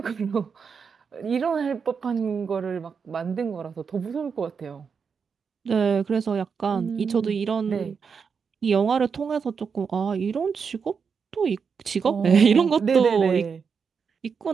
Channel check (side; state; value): left; quieter; 6.0 dB